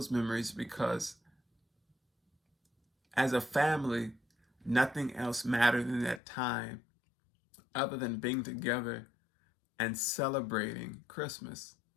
memories because as a family, nothing else mattered in that time other than being together and celebrating Christmas,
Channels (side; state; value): right; drops out; at 6.2 s